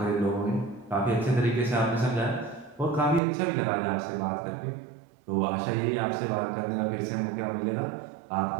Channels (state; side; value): drops out; left; at 3.2 s